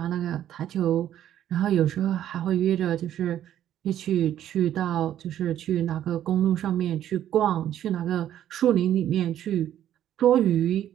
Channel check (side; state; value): left; quieter; 11.4 dB